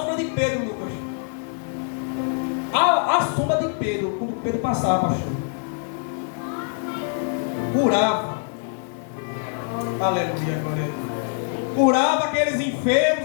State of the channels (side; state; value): right; silent; 58 dB below the other